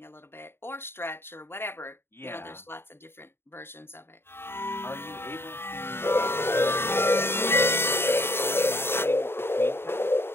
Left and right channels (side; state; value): right; late; 0.11 ms